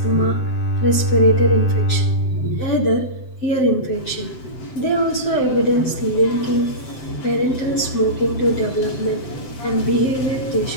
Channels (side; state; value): right; late; 7.8 ms